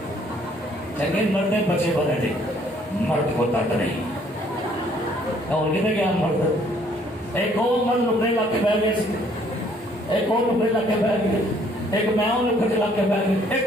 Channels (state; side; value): normal; both; correlation 0.63